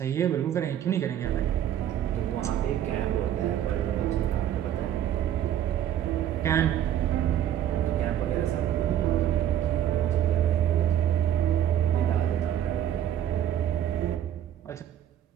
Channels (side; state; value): left; quieter; 10.8 dB